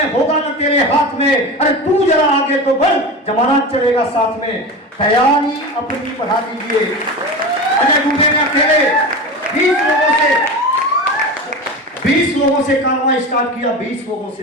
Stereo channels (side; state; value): both; normal; correlation 0.26